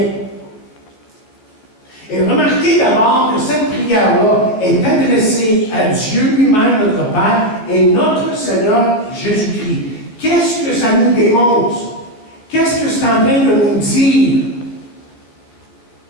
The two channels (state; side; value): late; right; 14 ms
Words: Et remarquez d'abord que cette prière-là est adressée à Dieu lui-même, notre Père, et notre Seigneur Jésus-Christ. Qu'est-ce que ça nous démontre? Qu'est-ce que c'est en train de nous dire?